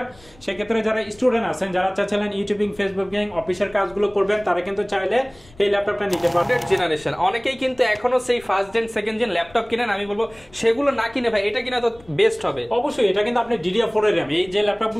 সেক্ষেত্রে যারা স্টুডেন্ট আছেন, যারা চাচ্ছেন ইউটিউবিং, ফেসবুকিং, অফিসের কাজগুলো করবেন, তারা কিন্তু চাইলে এই ল্যাপটপটা নিতে পারবেন। জেনারেশন অনেকেই কিন্তু এখনো সেই first gen second gen laptop কিনেন। আমি বলবো সেগুলো না কিনে ভাই এটা কিনা তো বেস্ট হবে। অবশ্যই এটা কিন্তু আপনি DDR4 এর র্যাম, এই যে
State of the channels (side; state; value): left; noise; rumble, 26 dB below the sound